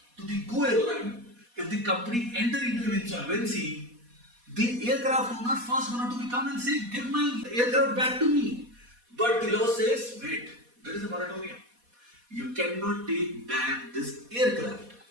to the Go Airline. If the company enter into an insolvency, the aircraft owner first going to come and say, give my aircraft back to me. But the law says, wait, there is a moratorium. You cannot take back this aircraft.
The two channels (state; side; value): late; left; 4.2 ms